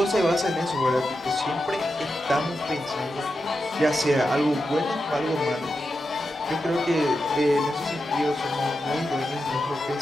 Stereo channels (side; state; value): both; normal; correlation 0.89